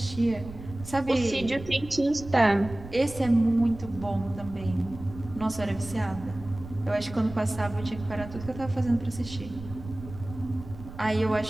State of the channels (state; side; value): noise; right; rumble, 14 dB below the sound